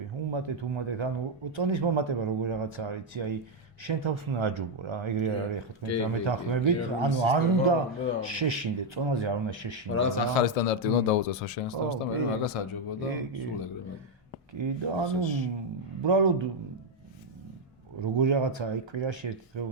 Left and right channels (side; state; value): both; normal; correlation 0.02